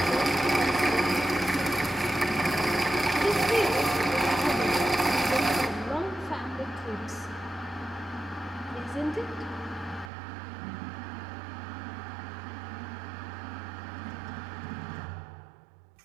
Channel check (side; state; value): left; drops out; at 10.1 s